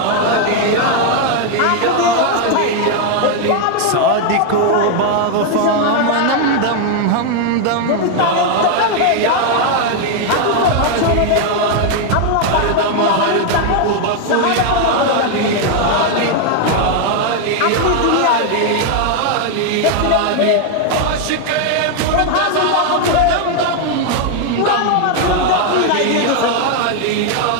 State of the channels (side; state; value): both; different; correlation 0.00